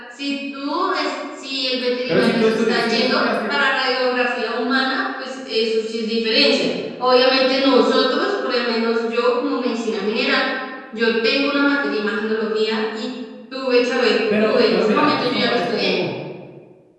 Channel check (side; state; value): both; identical; correlation 1.00